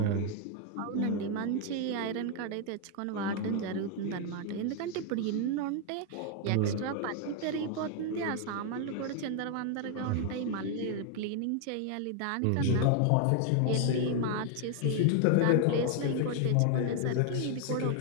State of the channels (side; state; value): both; different; correlation 0.00